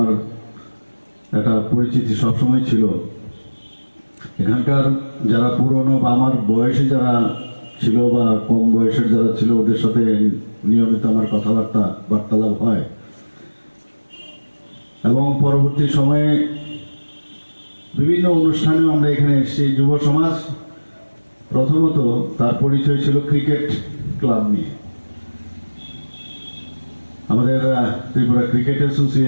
একটা পরিচিতি সবসময় ছিল। এখানকার যারা পুরনো বা আমার বয়সী যারা ছিল বা কম বয়সের যারা ছিল, ওদের সাথে নিয়মিত আমার বার্তালাপ হয়। এবং পরবর্তী সময়ে বিভিন্ন অনুষ্ঠানেও আমরা এখানে এসেছি। যুব সমাজ প্রথমত তার পরিচয় ছিল ক্রিকেট ক্লাব নিয়ে। আমাদের ত্রিপুরা ক্রিকেট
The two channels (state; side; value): inverted; both; correlation -1.00